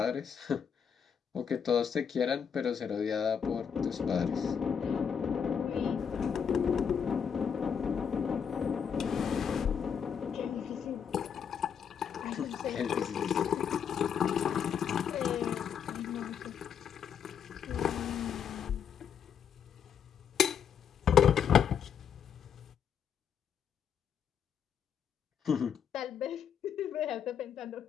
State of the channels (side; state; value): right; quieter; 7.5 dB